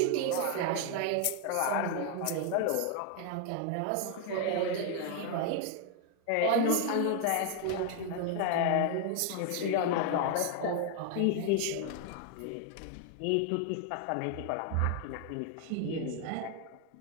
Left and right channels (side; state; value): both; different; correlation 0.00